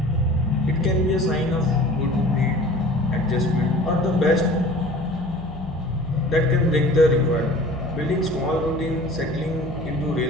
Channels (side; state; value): left; noise; hum, 15 dB below the sound